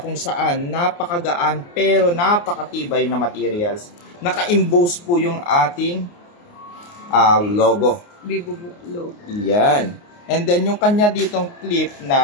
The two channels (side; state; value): right; late; 29 ms